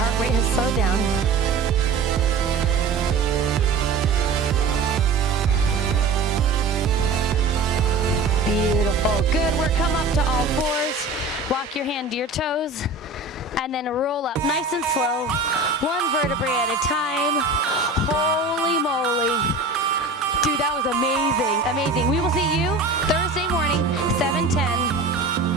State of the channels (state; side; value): quieter; left; 3.7 dB